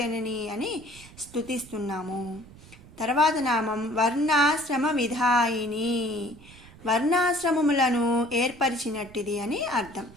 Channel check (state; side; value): noise; right; rumble, 21 dB below the sound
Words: అని స్తుతిస్తున్నాము. తర్వాత నామం వర్ణాశ్రమ విధాయిని, వర్ణాశ్రమములను ఏర్పరిచినట్టిది అని అర్థం.